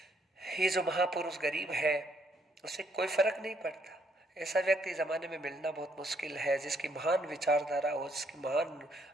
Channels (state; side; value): normal; both; correlation 0.70